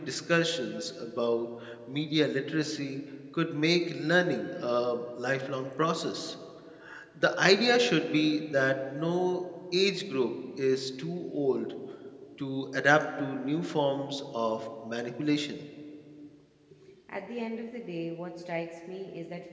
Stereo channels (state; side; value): identical; both; correlation 1.00